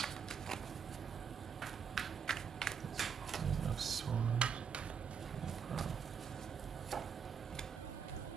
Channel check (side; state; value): left; quieter; 6.8 dB